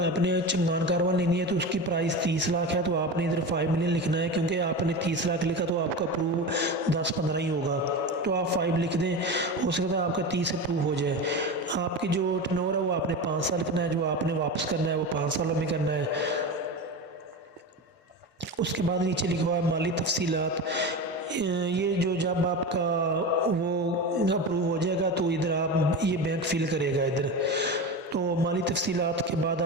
चंगान कारवां लेनी है तो उसकी प्राइस 30 लाख है, तो आपने इधर 5 मिलियन लिखना है, क्योंकि आपने 30 लाख लिखा तो आपका प्रूव 10-15 ही होगा। تو آپ 5 لکھ دیں، ہو سکتا ہے آپ کا 30 اپروو ہو جائے۔ آپ کی جو ٹرن اوور ہے وہ آپ نے 5 سال لکھنا ہے، جو آپ نے واپس کرنا ہے وہ 5 سالوں میں کرنا ہے۔ اس کے بعد نیچے لکھا ہوا ہے مالی تفصیلات، یہ جو جب آپ کا وہ اپروو ہو جائے گا تو ادھر آپ یہ بینک فل کرے گا ادھر۔ تو مالی تفصیلات کے بعد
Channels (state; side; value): normal; both; correlation 0.25